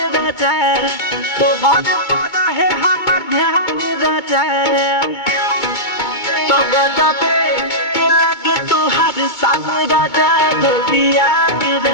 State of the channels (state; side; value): late; right; 2.2 ms